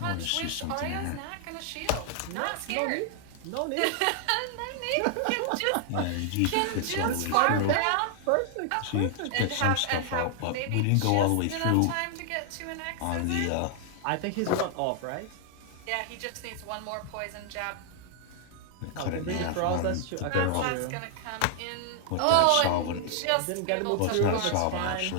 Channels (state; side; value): different; both; correlation 0.00